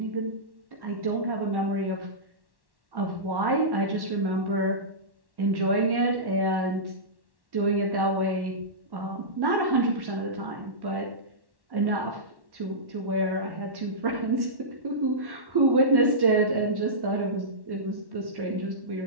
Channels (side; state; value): left; late; 1.1 ms